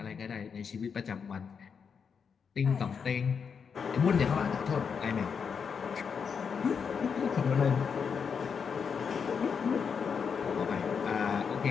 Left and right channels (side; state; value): right; quieter; 6.3 dB